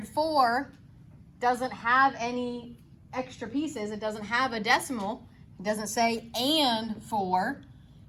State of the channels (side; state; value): both; identical; correlation 1.00